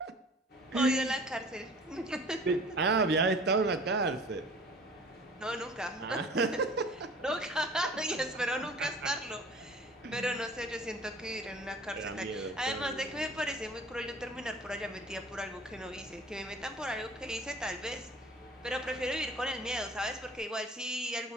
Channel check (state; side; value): normal; both; correlation 0.47